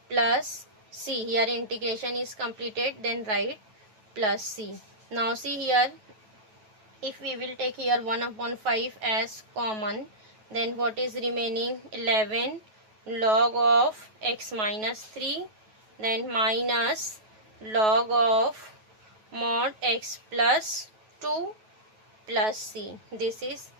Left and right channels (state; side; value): late; left; 9.3 ms